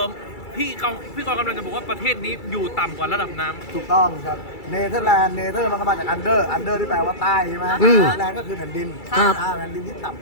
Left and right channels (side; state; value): right; late; 2.3 ms